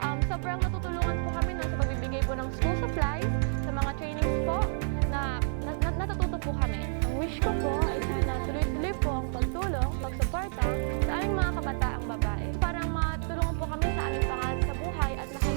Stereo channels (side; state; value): left; silent; 58 dB below the other